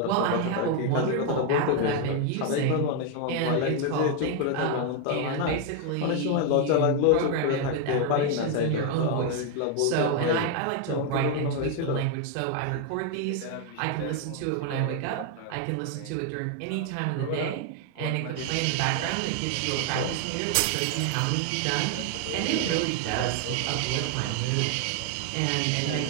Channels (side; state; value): both; different; correlation 0.01